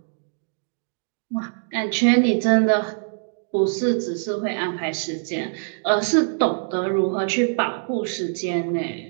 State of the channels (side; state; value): left; silent; digital silence